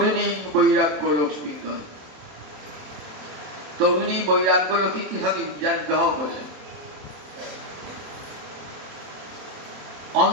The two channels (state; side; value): late; left; 27 ms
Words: বৈরাগ্য লক্ষ্মী রথে। তরুণী বৈরাগ্য লক্ষ্মী কি থাকে যার বিবাহ করলেন।